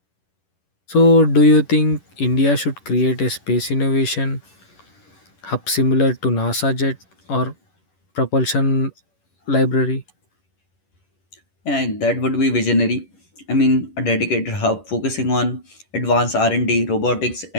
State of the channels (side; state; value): right; late; 11 ms